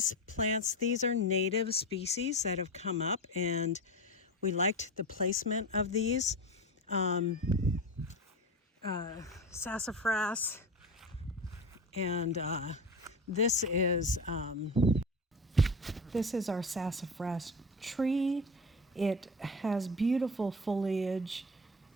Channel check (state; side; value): normal; both; correlation 0.26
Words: plants. These are native species that have come up, and we liked the placement of these. Sassafras, and this is our sassafras tree. It has beautiful foliage,